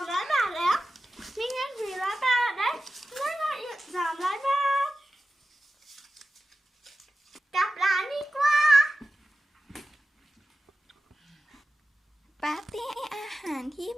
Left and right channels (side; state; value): both; normal; correlation 0.94